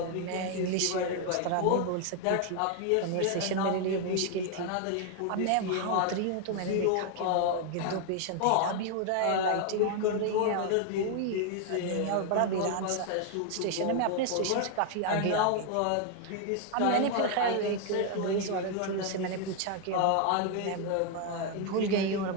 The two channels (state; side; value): different; both; correlation 0.01